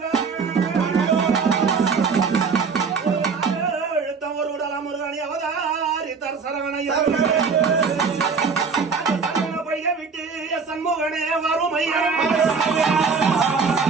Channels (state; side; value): quieter; left; 5.3 dB